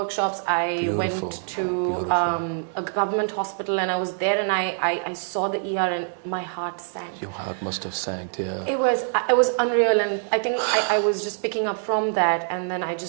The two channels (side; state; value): left; silent; digital silence